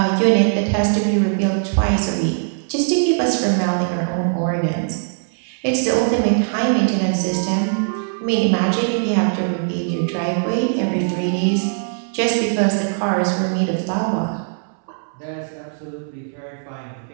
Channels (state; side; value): silent; left; 66 dB below the other